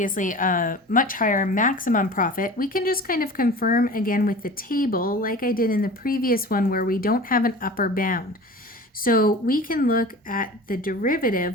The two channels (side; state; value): both; normal; correlation 0.38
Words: a much higher maximum profit. We can just kind of confirm again with the table, like I did in the previous one where we don't have an upper bound. So we can look at the